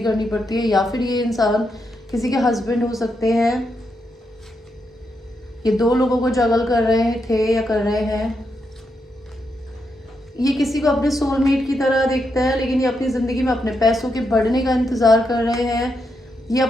करनी पड़ती है, या फिर ये इंसान किसी के हस्बैंड हो सकते हैं। ये दो लोगों को जगल कर रहे थे या कर रहे हैं। ये किसी को अपने सोलमेट की तरह देखता है, लेकिन ये अपनी ज़िंदगी में अपने पैसों के बढ़ने का इंतज़ार कर रहे हैं। ये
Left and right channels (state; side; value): normal; both; correlation 0.82